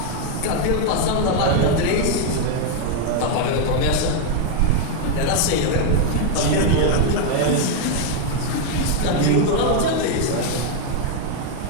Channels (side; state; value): both; different; correlation 0.01